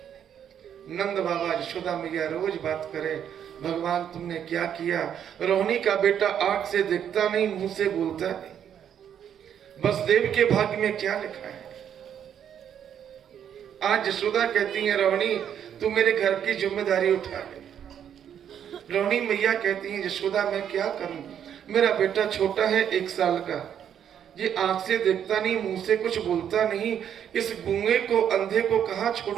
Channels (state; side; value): quieter; left; 9.1 dB